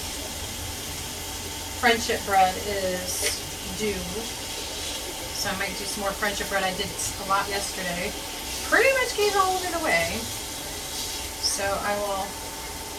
friendship bread is due, so I might do some more friendship bread. I did a lot yesterday. Pretty much gave all of it away, so I will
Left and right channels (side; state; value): both; identical; correlation 1.00